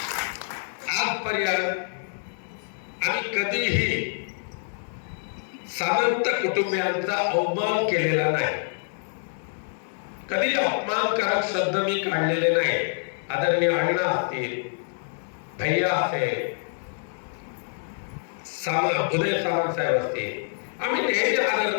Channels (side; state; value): right; silent; digital silence